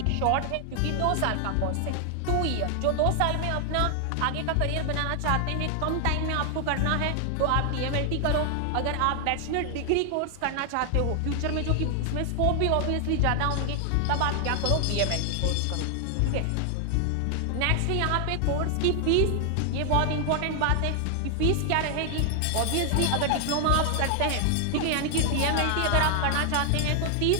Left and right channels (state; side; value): different; both; correlation 0.00